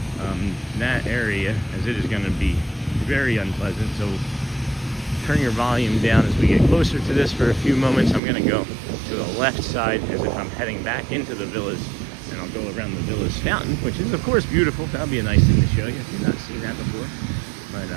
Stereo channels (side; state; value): left; drops out; at 8.2 s